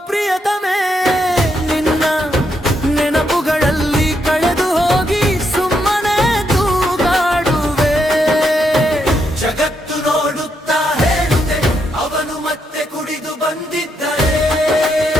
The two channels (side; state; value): both; normal; correlation 0.79